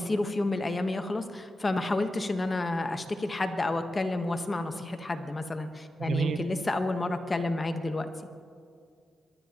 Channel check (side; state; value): both; normal; correlation 0.91